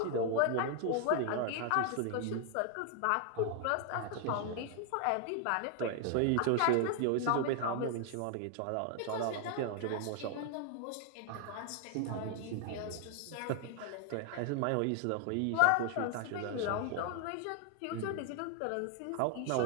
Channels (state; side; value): different; both; correlation 0.00